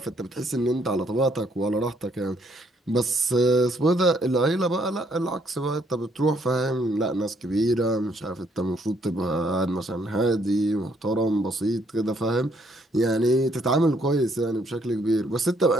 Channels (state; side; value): normal; both; correlation 0.69